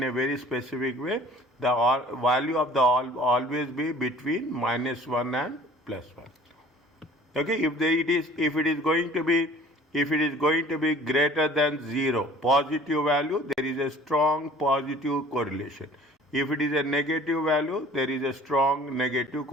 a very specific way. The value of the always be between -1 and +1. Okay, if it is going to be greater than 0, positive value, there is a strong positive correlation. If it is a negative value, there is a strong negative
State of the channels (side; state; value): both; normal; correlation 0.49